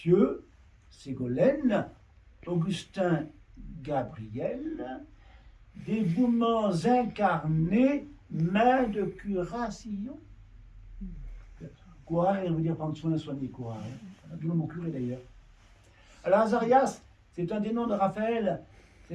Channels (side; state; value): both; identical; correlation 1.00